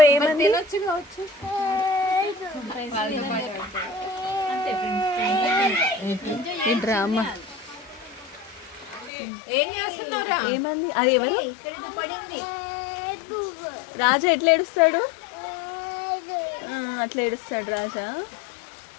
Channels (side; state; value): right; drops out; at 9.1 s